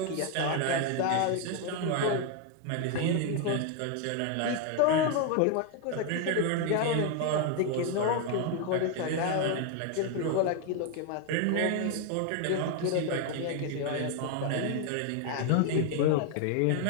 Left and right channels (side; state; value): both; different; correlation 0.01